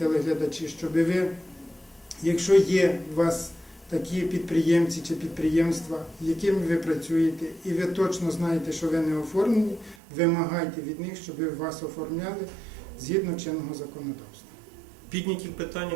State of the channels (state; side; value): drops out; left; at 10.0 s